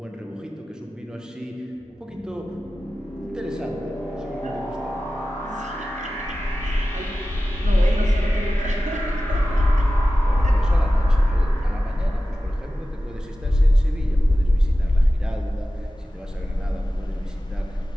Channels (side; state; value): both; normal; correlation 0.95